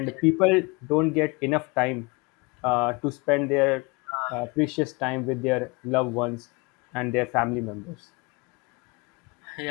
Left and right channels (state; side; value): quieter; right; 27.9 dB